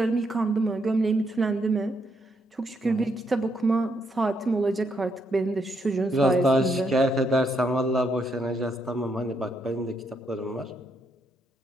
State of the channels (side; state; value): both; normal; correlation 0.76